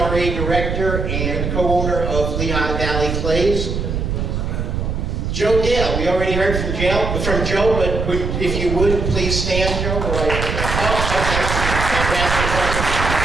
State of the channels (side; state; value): right; noise; rumble, 2 dB below the sound